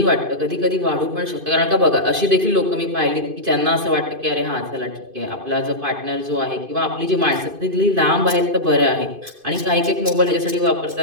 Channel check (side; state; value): left; late; 2.5 ms